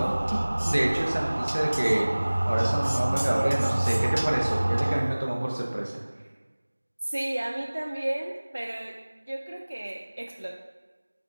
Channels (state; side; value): inverted; both; correlation -1.00